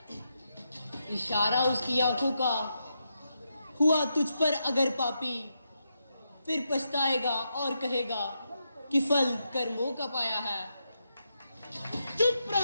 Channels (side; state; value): both; inverted; correlation -0.84